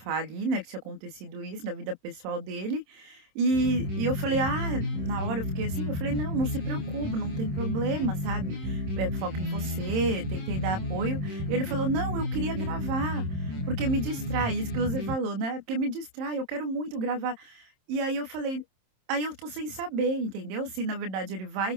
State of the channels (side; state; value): left; late; 26 ms